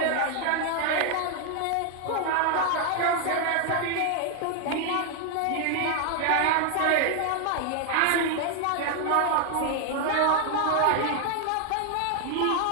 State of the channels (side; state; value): both; different; correlation 0.00